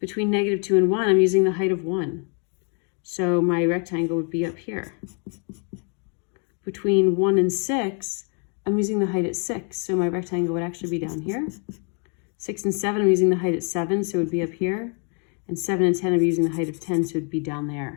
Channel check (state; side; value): quieter; right; 39.7 dB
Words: -2 and 1, I'm using the height of 1. So my rectangle would be up here. Between 1 and 6, I'm using the height at 6. So my rectangle would actually be down here. 6 and 7, I'm using the height at 7, so it would be up here. And 7 and 10, I'm using the height of 10, so it would be down